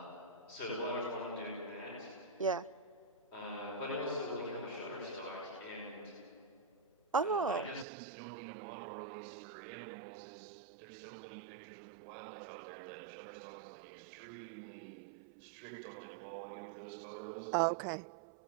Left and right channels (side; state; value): left; drops out; at 7.9 s